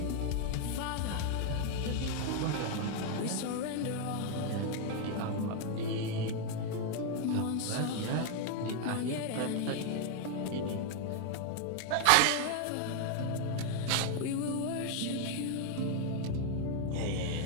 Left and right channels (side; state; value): both; different; correlation 0.00